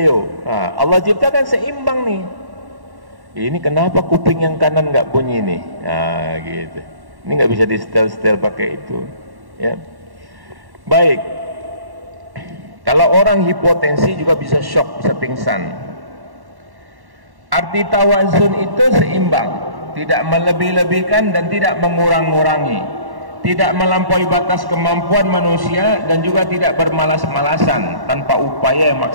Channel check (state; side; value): late; left; 1.1 ms